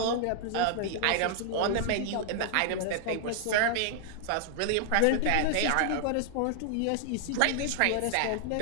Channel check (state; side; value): different; both; correlation -0.01